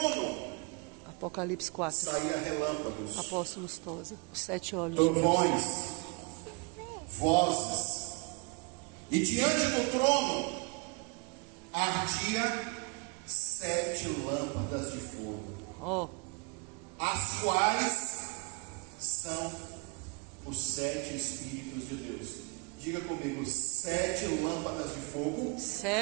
Apocalipse 4. saía relâmpagos, Apóstolos Tosa. Os 7 olhos de Deus. trovões, vozes, e diante do trono ardia 7 lâmpadas de fogo, Ó, as quais são os 7 Espíritos de Deus. Diga comigo, 7 lâmpadas de fogo,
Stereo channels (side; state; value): left; quieter; 30.5 dB